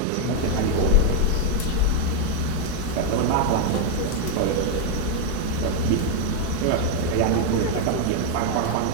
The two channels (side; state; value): both; different; correlation 0.01